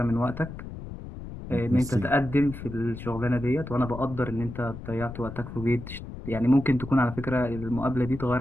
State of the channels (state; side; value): noise; left; rumble, 11 dB below the sound